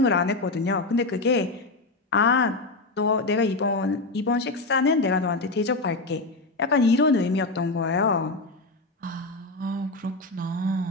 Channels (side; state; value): right; quieter; 3.2 dB